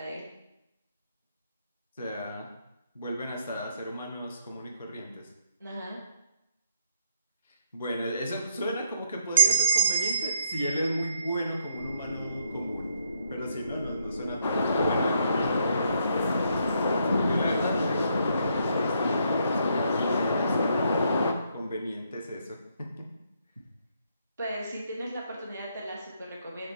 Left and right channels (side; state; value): both; inverted; correlation -0.73